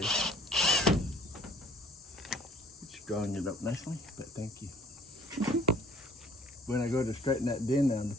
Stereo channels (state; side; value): normal; both; correlation 0.56